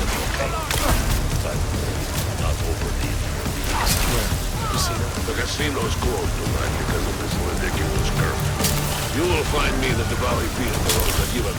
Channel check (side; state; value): both; identical; correlation 1.00